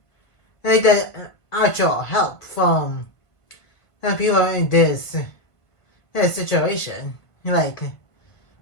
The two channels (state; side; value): late; right; 1.7 ms